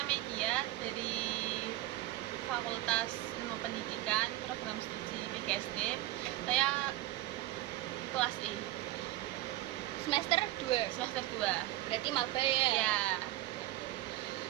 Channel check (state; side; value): quieter; left; 16.7 dB